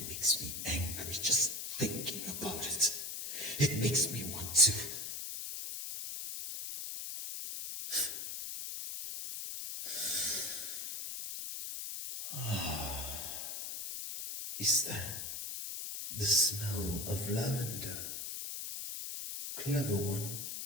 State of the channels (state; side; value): noise; left; hiss, 5 dB below the sound